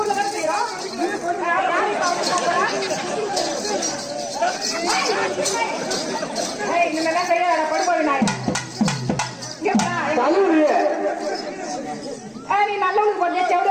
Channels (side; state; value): both; identical; correlation 1.00